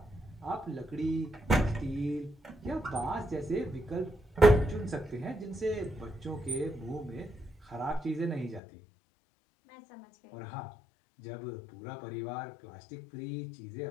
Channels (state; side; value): drops out; right; at 8.6 s